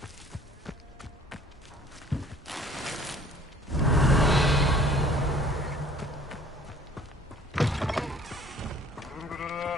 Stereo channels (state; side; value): normal; both; correlation 0.53